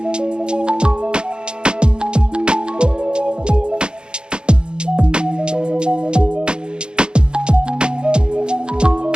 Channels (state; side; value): late; left; 0.050 ms